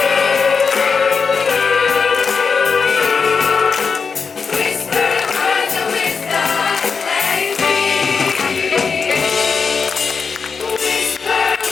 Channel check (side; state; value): right; quieter; 5.4 dB